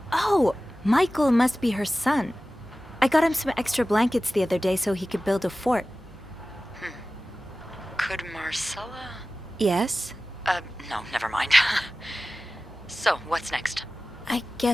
Oh! Michael must be her son. I got him some extra blankets the other day so he could build a fort. Could Marcella? Yes? No, never mind. So, what's next? I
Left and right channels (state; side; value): normal; both; correlation 0.96